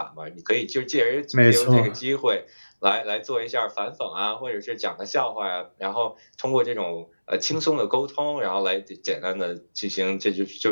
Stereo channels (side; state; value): both; inverted; correlation -1.00